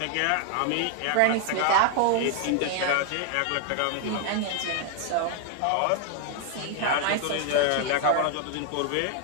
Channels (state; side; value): different; both; correlation 0.00